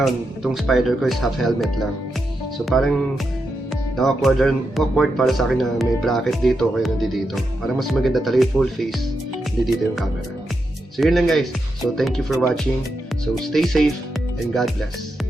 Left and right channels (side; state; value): both; normal; correlation 0.86